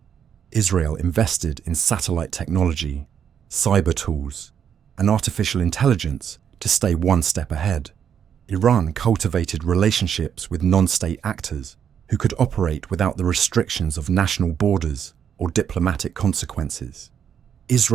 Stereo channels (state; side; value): quieter; left; 8.3 dB